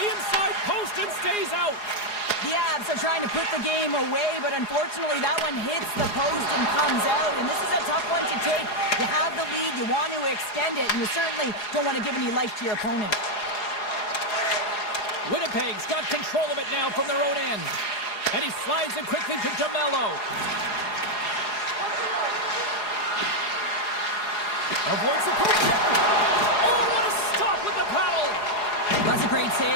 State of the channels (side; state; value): right; late; 4.8 ms